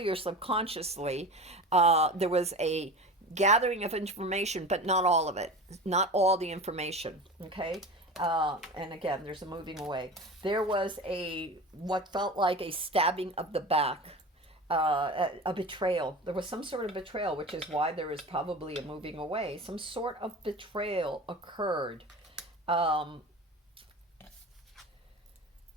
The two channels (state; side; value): normal; both; correlation 0.32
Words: or subconsciously, there was a gathering of information, but not all of it, not all the information. Okay. And again, there's a moving away. There was what felt like a stabbing of the back, a betrayal. There was some sort of betrayal, which is why there is probably a moving away. Some sort of betrayal occurred. For